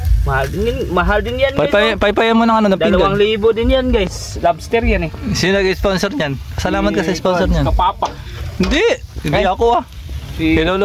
Mahal din yan, guys. Paypayan mo ng ano na pinggan. 2,000 din yan, guys. Lobster yan eh. Sino nag-sponsor niyan? Salamat ka sa sponsor niyan. Kapapa. Hindi ako ah.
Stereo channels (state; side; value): identical; both; correlation 1.00